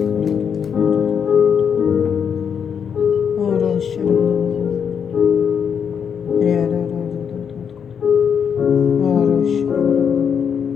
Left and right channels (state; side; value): quieter; right; 7.3 dB